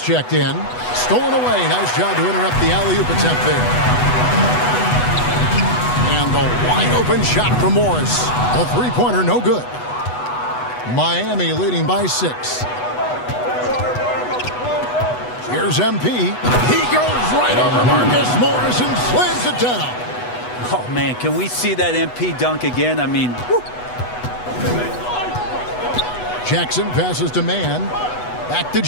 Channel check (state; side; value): late; right; 8.1 ms